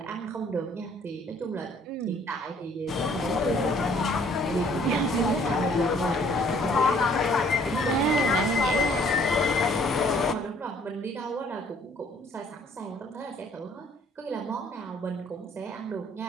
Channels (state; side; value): normal; both; correlation 0.60